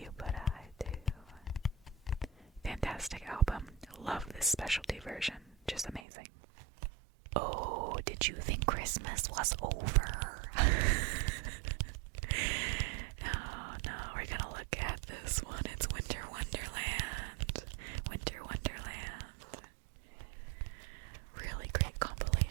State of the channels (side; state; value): left; drops out; at 6.0 s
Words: Did you think Christmas was over? No, we're gonna look at this one. It's Winter Wonderland. Winter Wonderland. Really great